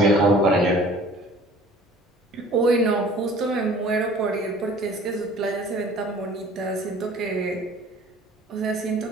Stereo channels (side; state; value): both; normal; correlation 0.50